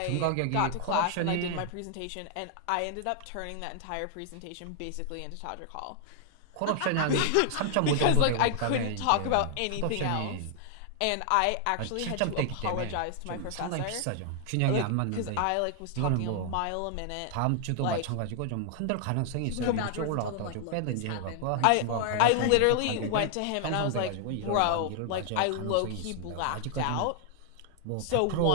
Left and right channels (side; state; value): both; different; correlation 0.00